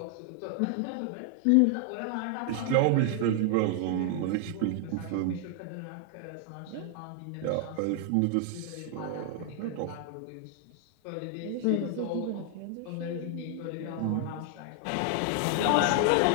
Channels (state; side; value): different; both; correlation 0.00